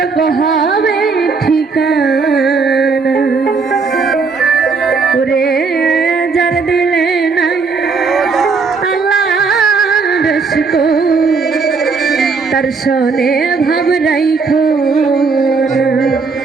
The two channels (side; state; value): left; quieter; 4.7 dB